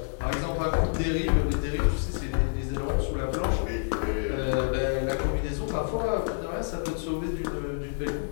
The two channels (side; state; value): right; silent; digital silence